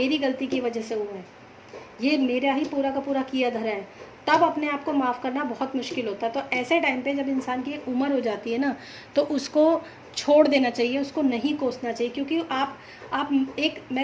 गलती की वजह से हुआ है, ये मेरा ही पूरा का पूरा किया धरा है, तब अपने आप को माफ़ करना बहुत मुश्किल होता है। तो ऐसे टाइम पे जब इंसान की एक उम्र हो जाती है ना, तो उसको छोड़ देना चाहिए, उसको नहीं कोसना चाहिए। क्योंकि आप एक,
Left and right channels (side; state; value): both; identical; correlation 1.00